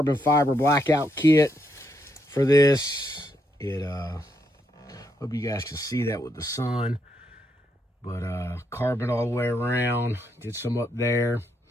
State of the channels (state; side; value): normal; both; correlation 0.78